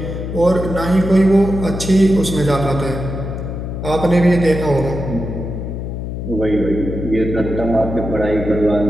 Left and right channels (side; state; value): left; noise; hum, 6 dB below the sound